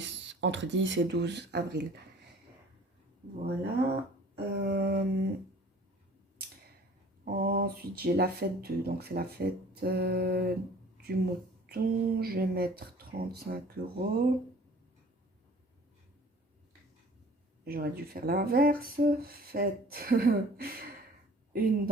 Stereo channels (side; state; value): both; normal; correlation 0.49